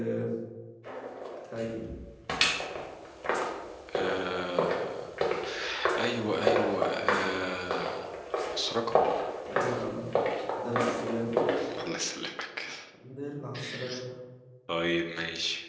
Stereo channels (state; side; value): identical; both; correlation 1.00